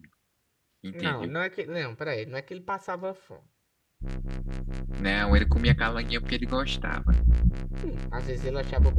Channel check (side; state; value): both; identical; correlation 1.00